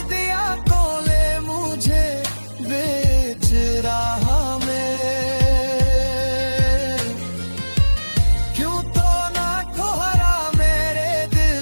दिया कोले मुझे बेच रहा में। क्यों तो ना कोहरा मेरे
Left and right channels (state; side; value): inverted; both; correlation -1.00